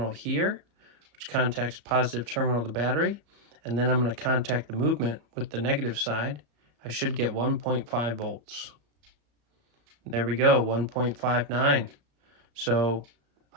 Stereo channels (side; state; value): left; late; 34 ms